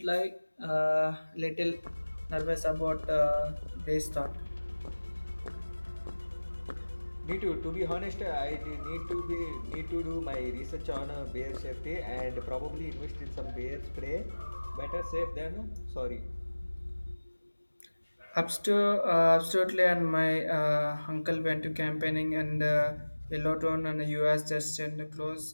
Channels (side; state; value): both; inverted; correlation -1.00